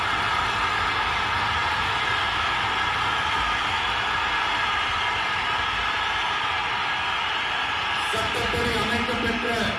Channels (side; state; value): both; identical; correlation 1.00